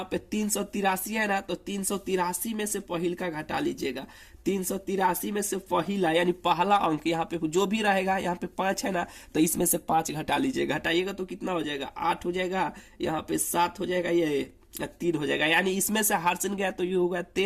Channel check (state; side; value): identical; both; correlation 1.00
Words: पे 383 है ना, तो 383 में से पहिल का घटा लीजिएगा। 383 में से पहिला यानी पहला अंक यहाँ पे जो भी रहेगा, यहाँ पे 5 है ना, तो इसमें से 5 घटा लीजिएगा। घटाइएगा तो कितना हो जाएगा, 8 हो जाएगा, यहाँ पे 7 हो जाएगा, ये 3 हो जाएगा, यानी इसमें से हार्सन गया तो ये होगा